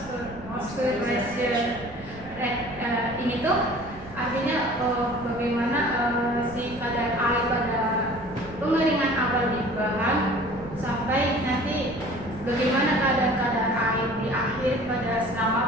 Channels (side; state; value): right; noise; rumble, 18 dB below the sound